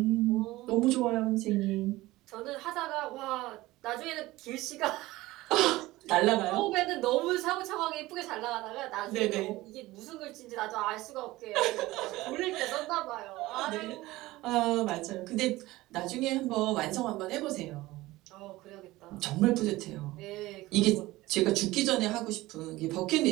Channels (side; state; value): left; quieter; 18.5 dB